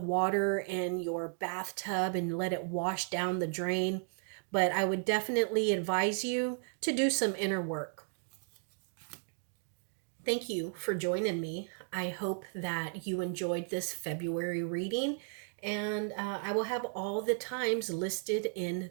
in your bathtub and let it wash down the drain. But I would definitely advise you to do some inner work. Thank you for joining me. I hope that you enjoyed this February reading, and I will have all the times listed in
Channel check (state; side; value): silent; left; 55 dB below the other